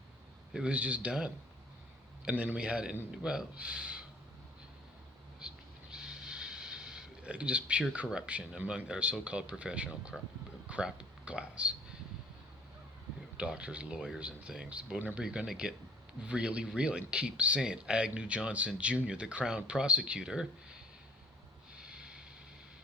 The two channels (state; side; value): normal; both; correlation 0.52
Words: It was just done. And then we had, just pure corruption among our so-called professional crap class. Doctors, lawyers, and things. But whenever you're going to get really real and keep saying Agnew Johnson Jr., the Crown Prosecutor,